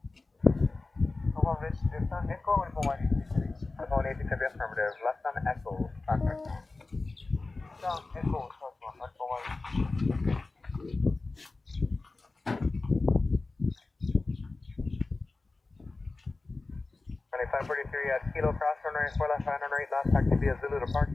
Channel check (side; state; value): right; quieter; 3.5 dB